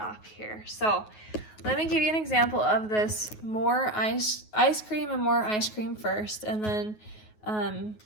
here. So let me give you an example of this. More ice cream and more ice cream first, and then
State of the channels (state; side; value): late; right; 9.4 ms